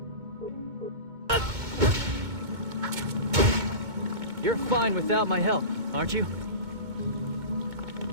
You're fine without my help, aren't you?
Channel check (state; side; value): late; left; 2.2 ms